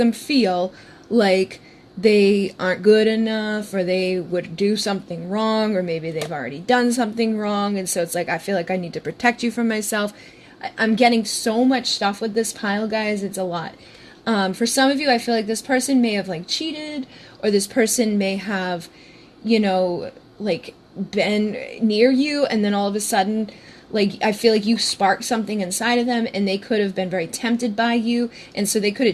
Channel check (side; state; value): both; identical; correlation 1.00